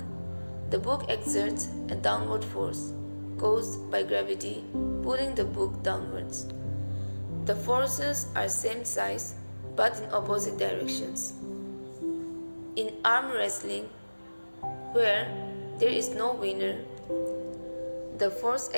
The book exerts a downward force caused by gravity pulling the book downwards. The forces are same size but in opposite directions. In arm wrestling, where there is no winner, the force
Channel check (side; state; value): both; inverted; correlation -1.00